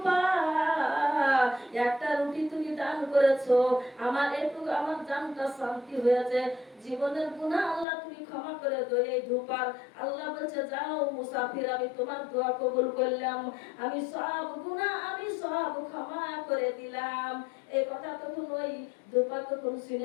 একটা রুটি তুমি দান করেছো, আমার একটু আমার জানটা শান্তি হয়েছে, জীবনের গুনাহ আল্লাহ তুমি ক্ষমা করে দাও। এই ধোপার আল্লাহ বলছে যাও মুসাফির আমি তোমার দোয়া কবুল করলাম, আমি সব গুনাহ আমি সব ক্ষমা করে দিলাম। এই কথা তখন ওই ধোপা তখন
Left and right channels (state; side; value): drops out; right; at 7.9 s